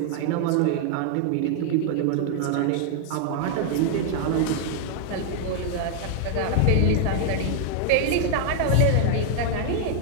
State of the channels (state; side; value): different; both; correlation 0.00